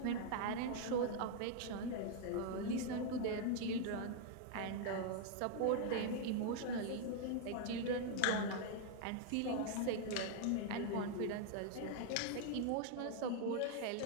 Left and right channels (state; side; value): different; both; correlation 0.00